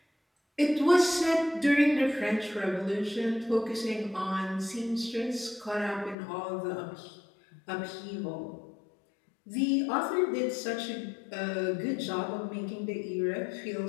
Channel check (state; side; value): drops out; right; at 6.2 s